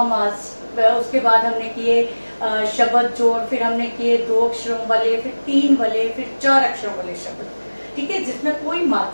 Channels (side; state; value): both; inverted; correlation -1.00